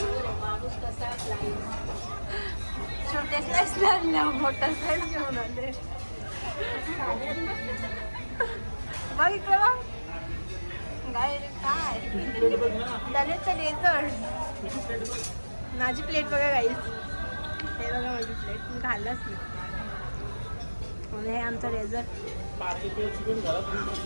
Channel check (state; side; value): inverted; both; correlation -1.00